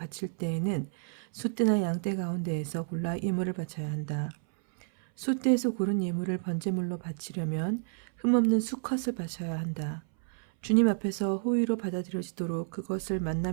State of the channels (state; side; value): silent; left; 58 dB below the other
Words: 때에는 숫대나 양떼 가운데에서 골라 예물을 바쳐야 한다. 숫대에서 고른 예물을 번제물로 바치려면 흠없는 수컷을 바쳐야 한다. 주님 앞에서 호의로 받아들여지도록 그것을